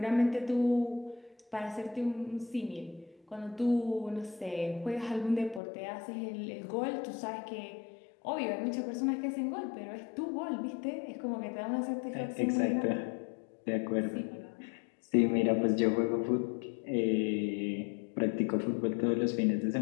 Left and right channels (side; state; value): right; drops out; at 5.6 s